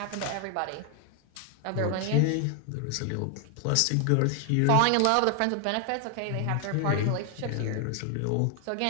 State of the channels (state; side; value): different; both; correlation 0.00